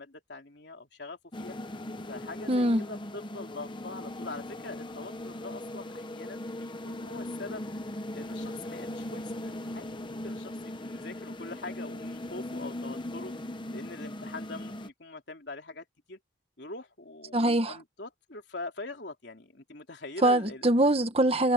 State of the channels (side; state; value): both; normal; correlation 0.49